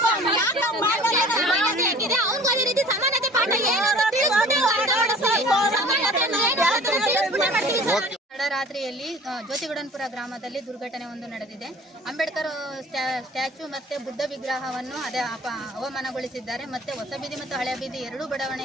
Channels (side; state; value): both; normal; correlation 0.47